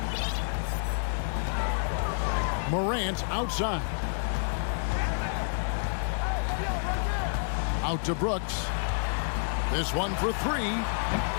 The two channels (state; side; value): silent; right; digital silence